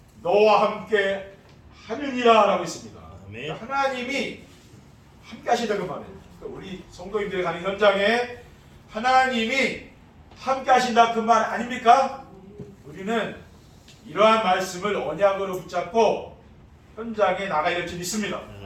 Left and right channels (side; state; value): both; identical; correlation 1.00